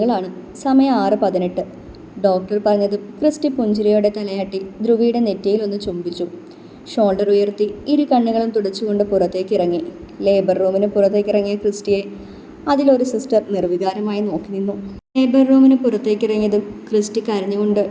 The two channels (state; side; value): identical; both; correlation 1.00